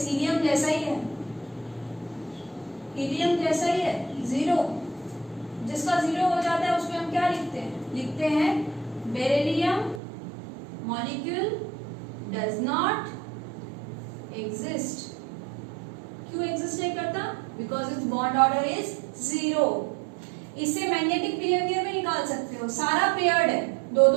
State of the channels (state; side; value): drops out; left; at 10.0 s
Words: हीलियम जैसा ही है, हीलियम जैसा ही है, 0. जिसका 0 हो जाता है उसमें हम क्या लिखते हैं, लिखते हैं beryllium molecule does not exist. क्यों एग्जिस्ट नहीं करता, because it's bond order is 0. इससे मैग्नेटिक बिहेवियर में निकाल सकते हो, सारा पेयर्ड है, 2